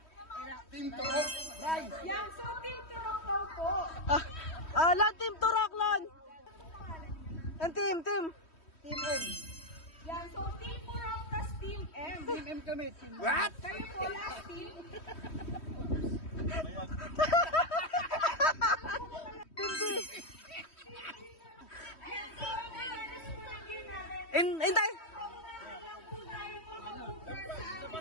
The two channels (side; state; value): right; late; 3.1 ms